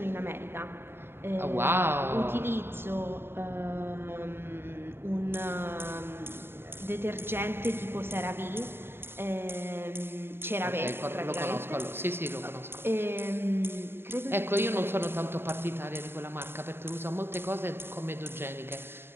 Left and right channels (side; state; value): left; late; 0.11 ms